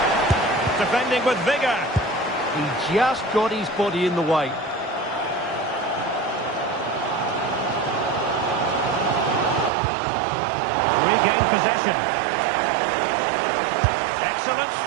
Defending with vigour. He just got his body in the way. Regained possession. Excellent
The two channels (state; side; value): drops out; left; at 9.7 s